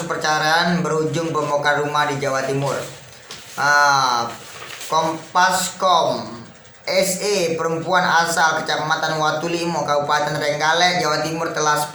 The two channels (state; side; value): identical; both; correlation 1.00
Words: perceraian berujung pembongkar rumah di Jawa Timur. Kompaskom SE, perempuan asal Kecamatan Watulimo, Kabupaten Trenggalek, Jawa Timur, telah